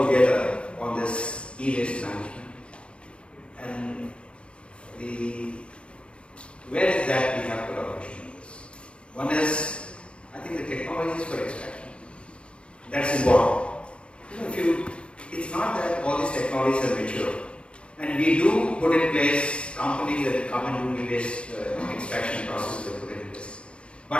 together on this e-waste management. And where is that we have collaboration? One is, I think, the technologies for extraction. That's important. It's not that all these technologies are mature. And we do put in place companies that come and do e-waste extraction.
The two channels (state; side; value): late; right; 0.058 ms